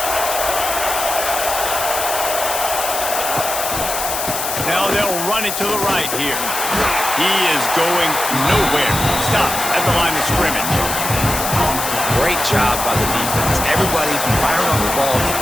Now they'll run it to the right here. He is going nowhere. Stop at the line of scrimmage. Great job by the defense. Everybody firing on the ball,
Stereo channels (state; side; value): noise; left; hiss, 3 dB below the sound